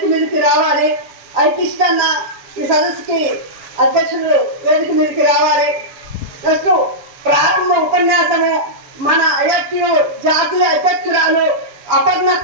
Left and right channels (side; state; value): left; late; 7.0 ms